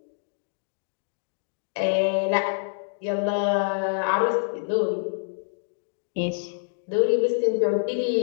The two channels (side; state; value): right; silent; digital silence